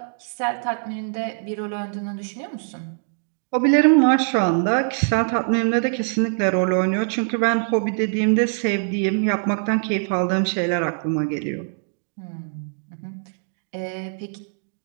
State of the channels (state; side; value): silent; left; digital silence